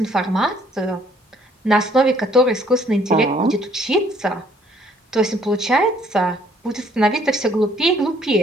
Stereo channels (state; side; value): normal; both; correlation 0.63